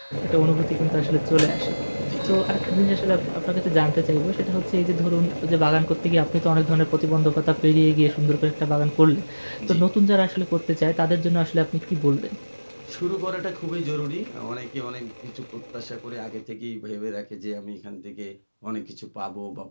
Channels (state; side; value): inverted; both; correlation -1.00